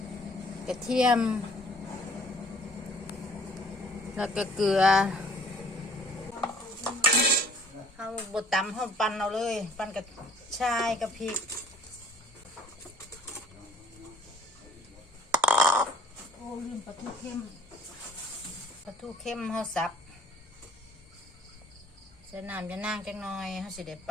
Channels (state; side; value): normal; both; correlation 0.54